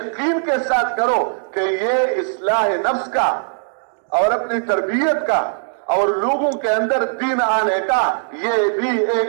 کے ساتھ کرو کہ یہ اصلاح نفس کا اور اپنی تربیت کا اور لوگوں کے اندر دین آنے کا یہ بھی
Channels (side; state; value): left; silent; digital silence